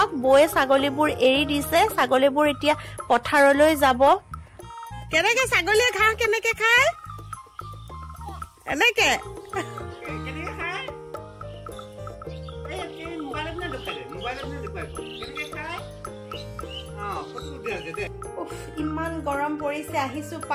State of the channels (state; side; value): identical; both; correlation 1.00